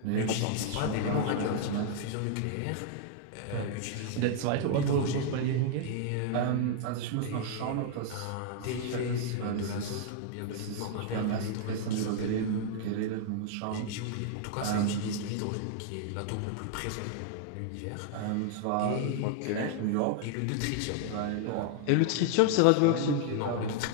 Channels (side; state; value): both; different; correlation 0.00